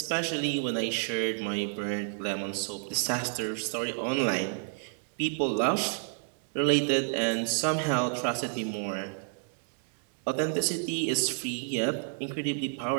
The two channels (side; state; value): left; silent; digital silence